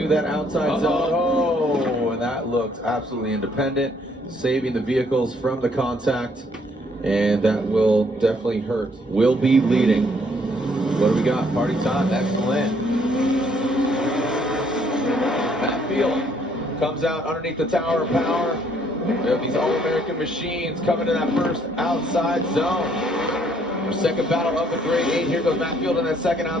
that outside zone. Oh, and that looked absolutely independent, saving the vehicles from the contact, and that will definitely hurt. Will be leading. What do we got? Party time. Excellent. Matt Field comes out underneath the Tower of Power. We have these All-American machines coming to that first outside zone. Our second battle of the grade 8. Here goes Matt Field in that second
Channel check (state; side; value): normal; both; correlation 0.66